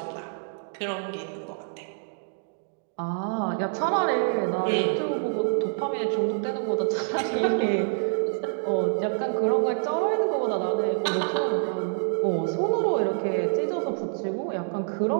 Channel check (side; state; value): left; silent; digital silence